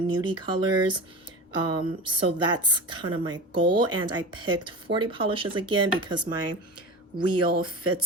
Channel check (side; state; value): both; normal; correlation 0.29